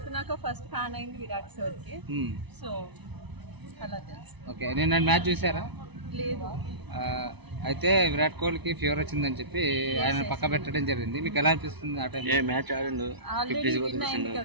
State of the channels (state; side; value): late; left; 0.99 ms